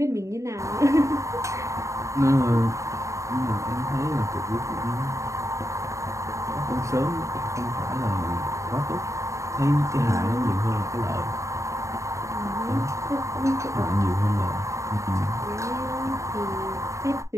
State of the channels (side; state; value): left; late; 0.15 ms